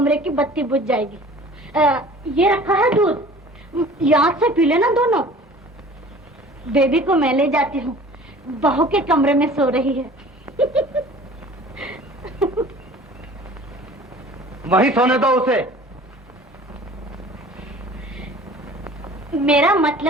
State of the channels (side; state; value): both; normal; correlation 0.46